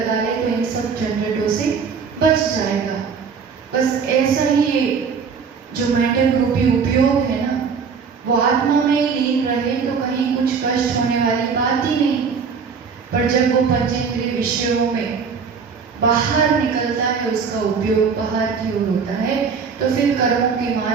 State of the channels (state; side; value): quieter; left; 5.8 dB